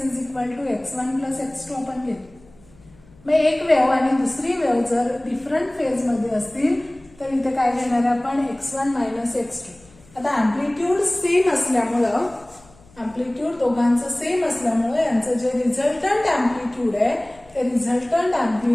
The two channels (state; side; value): noise; left; hum, 27 dB below the sound